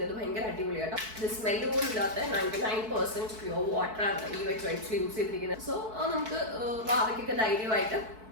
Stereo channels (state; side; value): late; left; 4.6 ms